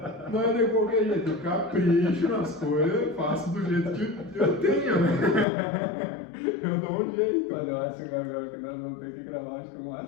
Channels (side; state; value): right; drops out; at 5.5 s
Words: Não é de qualquer jeito. Eu capricho nas coisas, faço do jeito que eu tenho, né? Eu dou um jeito. Mas eu acho, Gabriel, que nós vamos ter que gravar uma